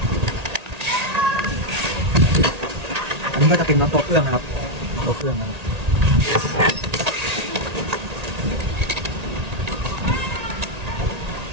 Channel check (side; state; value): left; late; 1.8 ms